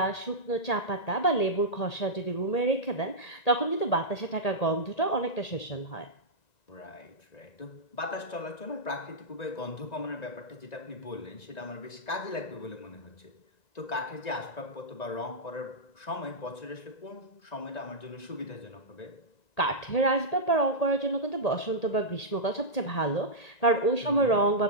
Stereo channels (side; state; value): right; late; 1.8 ms